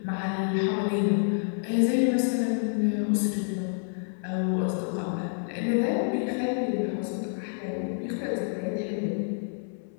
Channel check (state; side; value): silent; right; 57 dB below the other